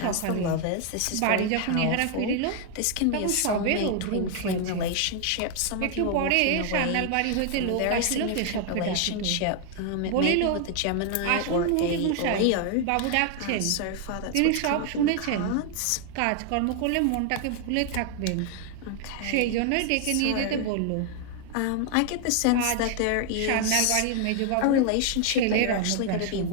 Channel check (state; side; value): different; both; correlation 0.00